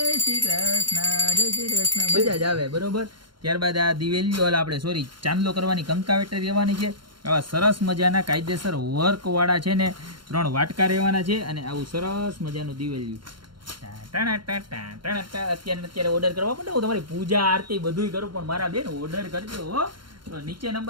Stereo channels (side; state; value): left; late; 0.73 ms